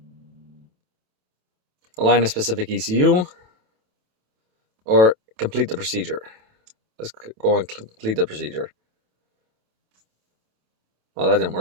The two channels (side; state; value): left; late; 27 ms